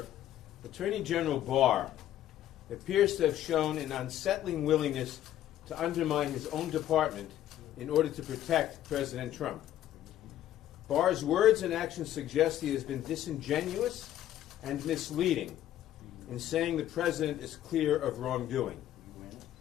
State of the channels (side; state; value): right; quieter; 12.3 dB